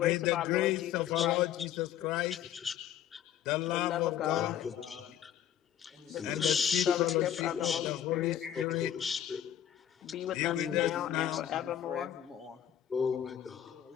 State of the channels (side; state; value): right; quieter; 10.5 dB